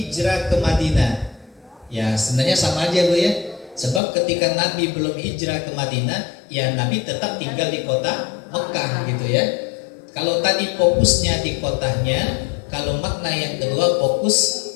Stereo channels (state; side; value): drops out; right; at 4.0 s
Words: ke Madinah. Ya, sebenarnya sama aja Bu ya. Sebab ketika Nabi belum hijrah ke Madinah, ya Nabi tetap tinggal di kota Mekah gitu ya. Kalau tadi fokusnya di kotanya, kalau makna yang kedua fokus